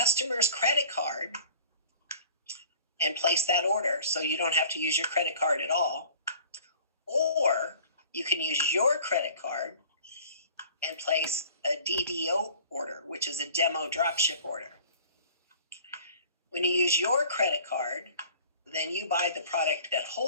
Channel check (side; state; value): both; inverted; correlation -0.48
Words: credit card and place that order, so you don't have to use your credit card at all, or you can use your credit card and place a DDO order, which is a demo dropship order. When you use your credit card, then you buy the product at